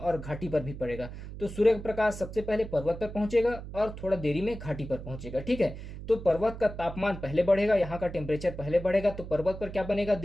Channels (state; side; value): noise; right; hum, 11 dB below the sound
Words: घाटी पर भी पड़ेगा। तो सूर्य का प्रकाश सबसे पहले पर्वत पर पहुंचेगा और थोड़ा देरी में घाटी पर पहुंचेगा। ठीक है, तो पर्वत का तापमान पहले बढ़ेगा, यहाँ का टेम्परेचर पहले बढ़ेगा। तो पर्वत पर क्या बनेगा,